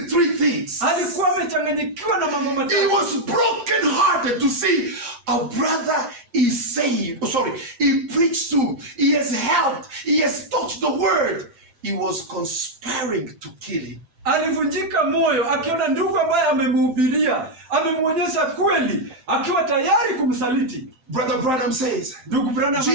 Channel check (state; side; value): late; left; 8.7 ms